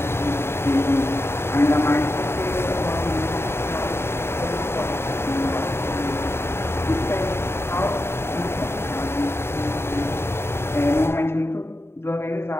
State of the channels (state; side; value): late; right; 0.12 ms